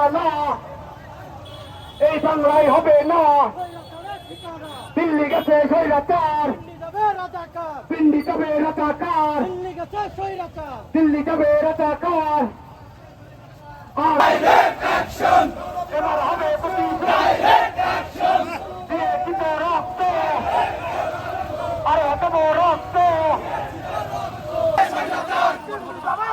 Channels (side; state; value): both; identical; correlation 1.00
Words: এই বাংলায় হবে না। দিল্লি গেছে স্বৈরাচার, পিন্ডি যাবে রাজাকার, দিল্লি যাবে রাজাকার। এবার হবে দিয়ে দিব রক্ত, আরে দেব রক্ত।